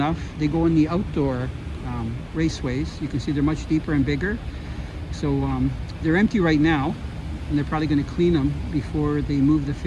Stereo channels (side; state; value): both; identical; correlation 1.00